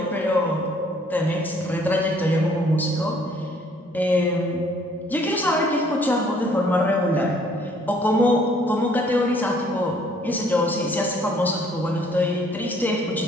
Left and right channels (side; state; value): both; normal; correlation 0.61